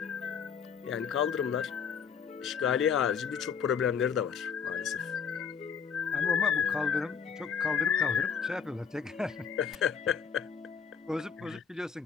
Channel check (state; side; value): quieter; right; 6.9 dB